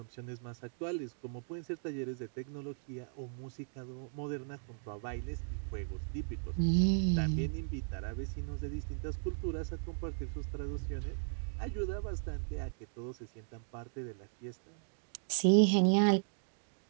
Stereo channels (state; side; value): silent; left; digital silence